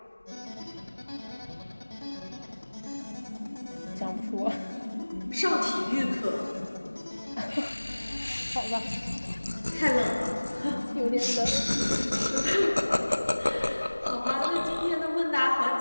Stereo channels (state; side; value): inverted; both; correlation -1.00